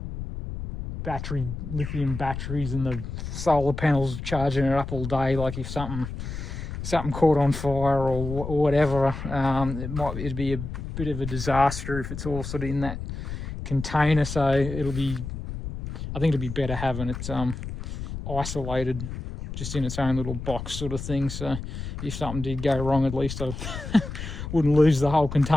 lithium batteries and the solar panels charging it up all day. Like if something caught on fire or whatever, it'd be a bit of a disaster if it's all sort of in that container. So I think it'd be better having it isolated, just in its own little box sort of thing. So if something did go wrong, at least I wouldn't lose the whole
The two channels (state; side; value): noise; left; rumble, 7 dB below the sound